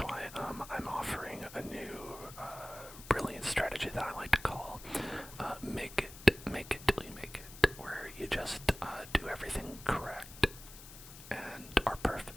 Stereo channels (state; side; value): noise; left; hiss, 16 dB below the sound